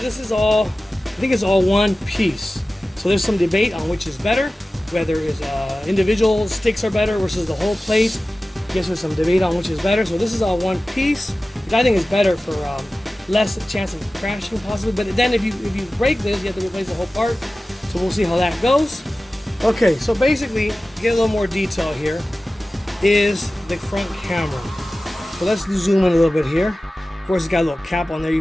is all, I think it's all one piece. So there's some debate on which is better, whether it's individual sticks are better versus the whole plate. I guess there's some debate on which is better. So this is all one piece, which I think is better for less chance of crashing possibly. But then if you break this, you have to replace the whole part. So we'll see how that goes. Okay, so basically, to get a little more detail here, is the front camera. So let's zoom in a little bit here. Of course, it's got a little cap on there. You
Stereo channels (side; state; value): both; normal; correlation 0.96